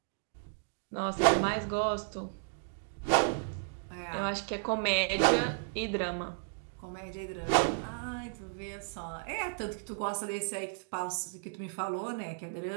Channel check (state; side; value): silent; left; digital silence